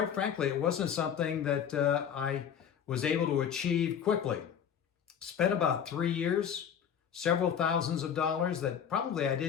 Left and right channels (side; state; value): right; quieter; 8.2 dB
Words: frankly, it wasn't something that I was able to achieve quickly. Spent about 3 years, several thousands of dollars that probably I